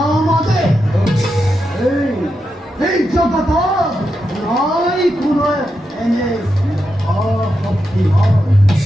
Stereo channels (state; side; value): normal; both; correlation 0.86